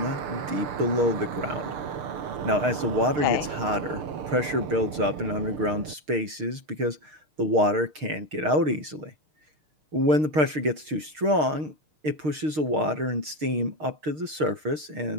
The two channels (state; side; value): late; left; 6.5 ms